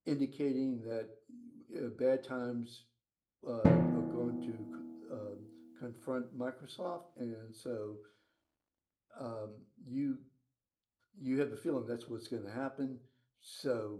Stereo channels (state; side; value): identical; both; correlation 1.00